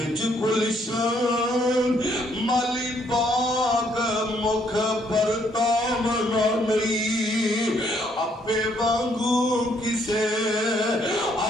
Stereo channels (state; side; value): normal; both; correlation 0.69